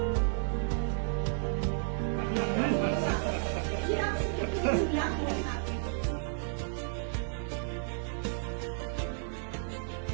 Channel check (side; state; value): left; silent; 56 dB below the other